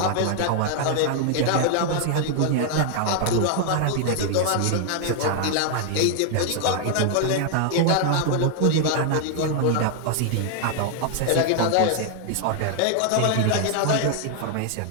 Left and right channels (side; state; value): both; different; correlation 0.00